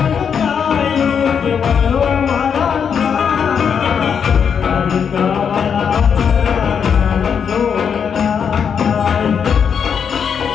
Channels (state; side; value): quieter; right; 7.1 dB